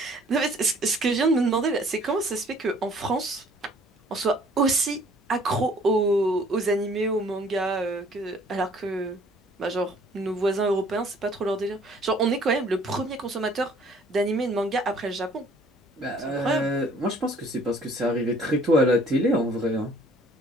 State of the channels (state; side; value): normal; both; correlation 0.57